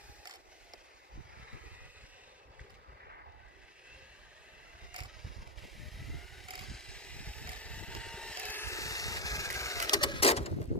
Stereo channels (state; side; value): normal; both; correlation 0.05